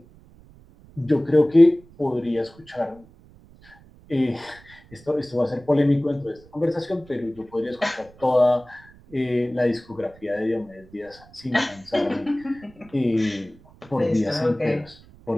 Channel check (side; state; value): right; noise; rumble, 25 dB below the sound